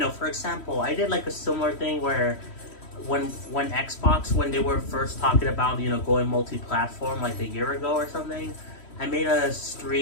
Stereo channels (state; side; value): late; right; 3.1 ms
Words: for example, I did like a similar thing where when Xbox, when they were first talking about, you know, going multi-platform like a year ago or something, I made a